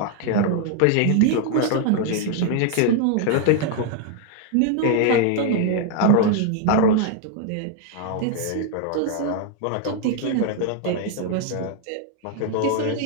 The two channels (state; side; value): different; both; correlation 0.00